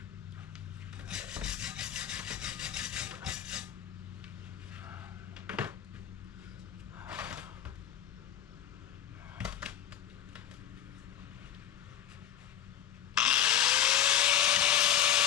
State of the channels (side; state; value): right; quieter; 10.3 dB